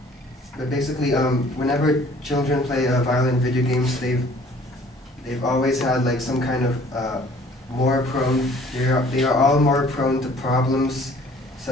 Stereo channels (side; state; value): both; normal; correlation 0.54